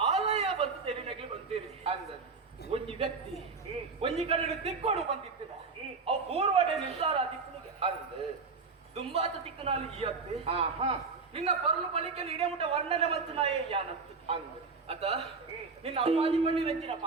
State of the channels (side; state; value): left; quieter; 4.6 dB